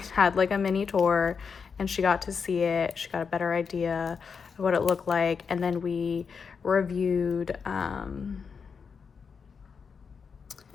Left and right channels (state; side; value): quieter; right; 5.9 dB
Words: had like a mini tour, and she got to see it. She got a better idea of what it looked like. And then we reviewed